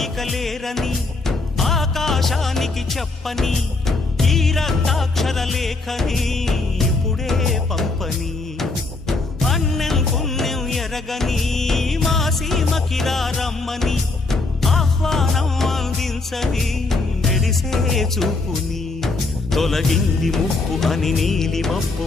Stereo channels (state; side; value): quieter; right; 3.5 dB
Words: అడగలేరని ఆకాశానికి చెప్పని ఈ రక్తాక్షర లేఖని ఇప్పుడే పంపని అన్నం పుణ్యం ఎరగని మా సీమకిరా రమ్మని ఆహ్వానం అందించని మెరిసే చూపుని తొలగింది ముప్పు అని నీలి మప్పు